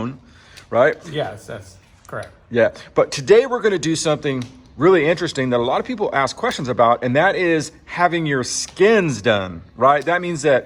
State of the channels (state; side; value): identical; both; correlation 1.00